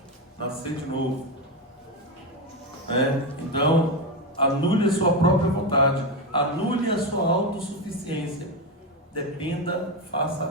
Nascer de novo. Então, anule a sua própria vontade. Anule a sua autossuficiência. Dependa, faça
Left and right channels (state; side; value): normal; both; correlation 0.12